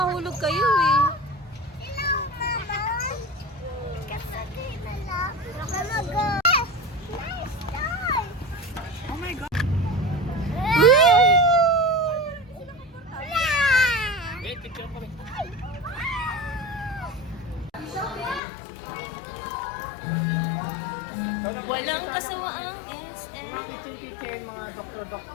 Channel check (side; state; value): right; drops out; at 18.4 s